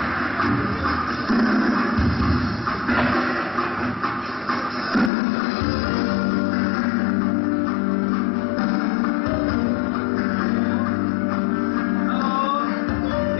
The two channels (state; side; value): drops out; right; at 5.1 s